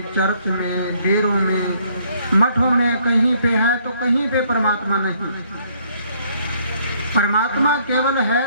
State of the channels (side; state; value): both; inverted; correlation -0.66